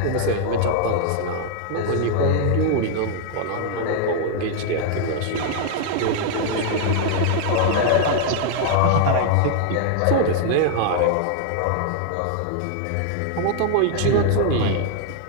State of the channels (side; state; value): both; different; correlation 0.00